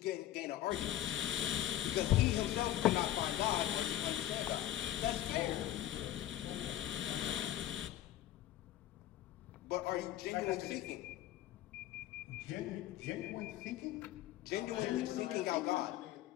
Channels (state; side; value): quieter; right; 13.2 dB